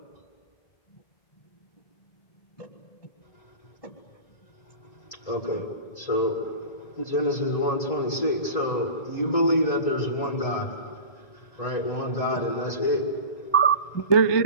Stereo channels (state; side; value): late; right; 1.9 ms